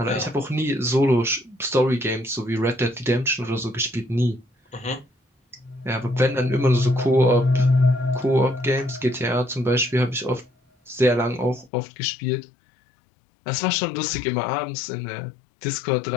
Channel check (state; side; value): drops out; right; at 11.7 s